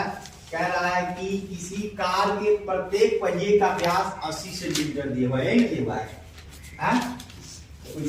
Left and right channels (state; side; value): identical; both; correlation 1.00